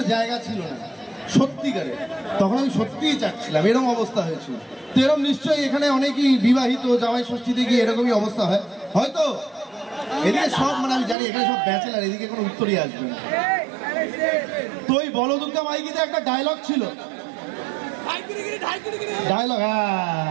জায়গা ছিল না সত্যিকারে। তখন আমি সত্যিই চাচ্ছিলাম, এরকম অবস্থা হয়েছিল। তো এরকম নিশ্চয়ই এখানে অনেকেই বিবাহিত, জামাই ষষ্ঠীতে গিয়ে এরকমই অবস্থা হয় হয়তো। এদিকে সব মানে আমি জানি এখানে সব ব্যাচেলার, এদিকে কোনো উত্তরই আসবে না। তো ওই বলদুর্গা মাইকিতে একটা ডায়লগ ছিল, ডায়লগ,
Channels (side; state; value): left; drops out; at 11.2 s